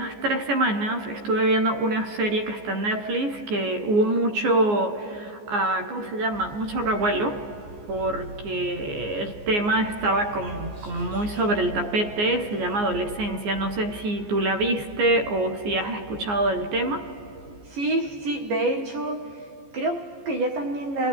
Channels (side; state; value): left; late; 14 ms